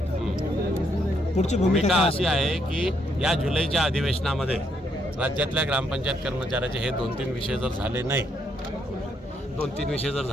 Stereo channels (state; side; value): normal; both; correlation 0.74